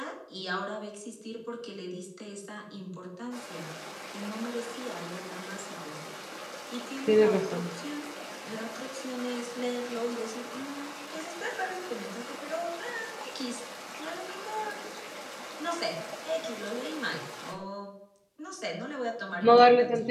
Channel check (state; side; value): identical; both; correlation 1.00